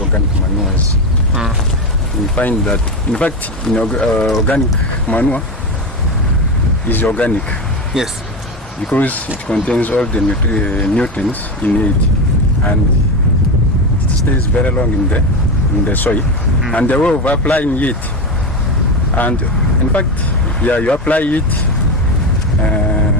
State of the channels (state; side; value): normal; both; correlation 0.18